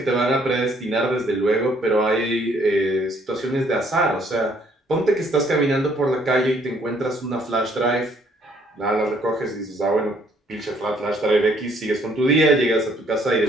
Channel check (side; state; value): both; normal; correlation 0.64